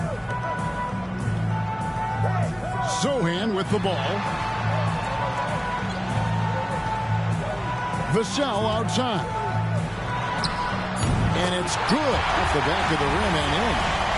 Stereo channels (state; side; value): identical; both; correlation 1.00